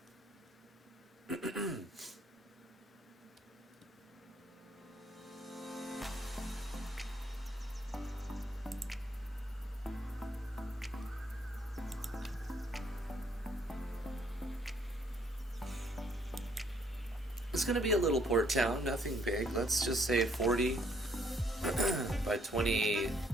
It's going to be a little port town, nothing big. Let's just say 40 by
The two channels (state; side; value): normal; both; correlation 0.67